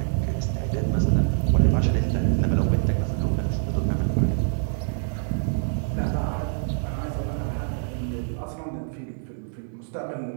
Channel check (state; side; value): silent; left; digital silence